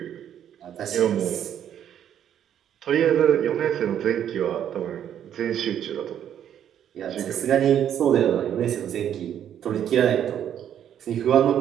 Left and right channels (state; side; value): quieter; left; 9.9 dB